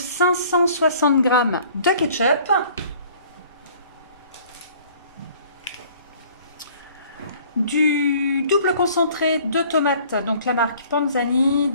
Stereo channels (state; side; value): inverted; both; correlation -0.53